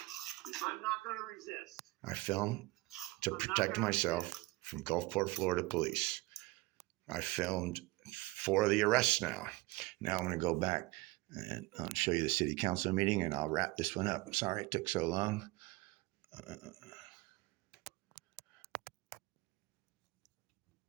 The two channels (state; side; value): quieter; left; 21.6 dB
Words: I'm not going to resist. I filmed to protect myself from Gulfport, Florida police. I filmed 4 of the arrests now. Now I'm going to go back and I'll show you the City Council meeting, and I'll wrap this one up. I'm sorry it took so long.